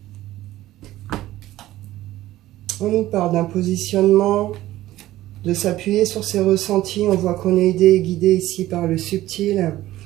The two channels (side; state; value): left; quieter; 15.2 dB